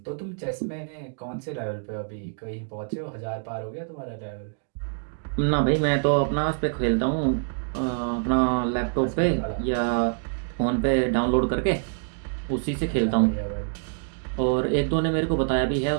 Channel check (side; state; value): left; silent; digital silence